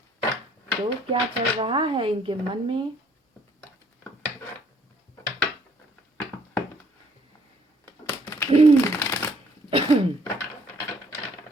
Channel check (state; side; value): normal; both; correlation 0.63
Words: तो क्या चल रहा है इनके मन में,